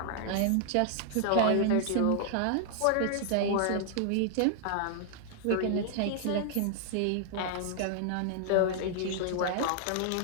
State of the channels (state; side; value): different; both; correlation -0.01